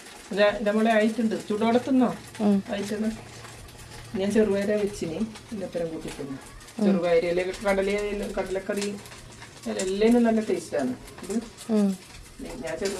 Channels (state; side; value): identical; both; correlation 1.00